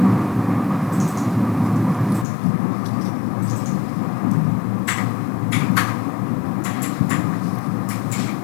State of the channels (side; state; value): right; drops out; at 2.2 s